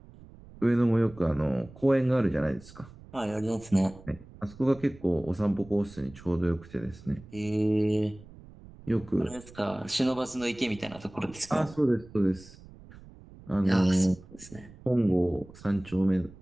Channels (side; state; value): right; noise; rumble, 20 dB below the sound